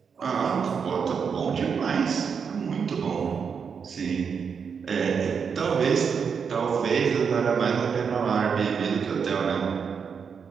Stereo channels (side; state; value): left; quieter; 6.3 dB